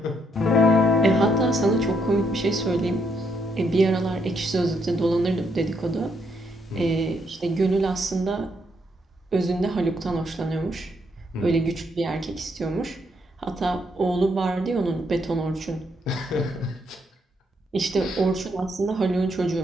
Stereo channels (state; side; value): normal; both; correlation 0.75